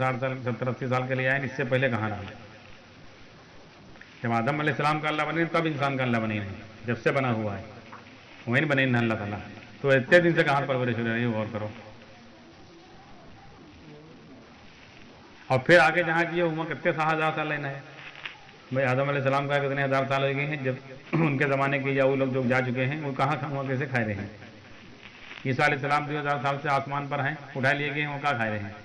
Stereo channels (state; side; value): identical; both; correlation 1.00